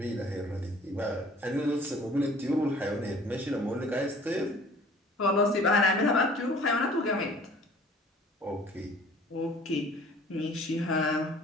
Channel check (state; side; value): normal; both; correlation 0.51